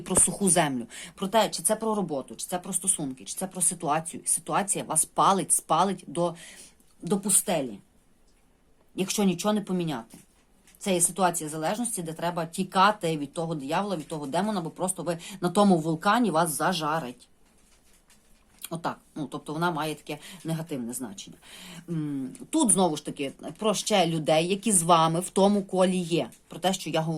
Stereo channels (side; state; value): both; identical; correlation 1.00